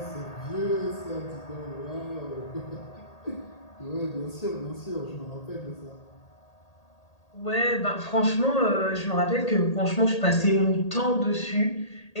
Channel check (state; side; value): late; right; 1.8 ms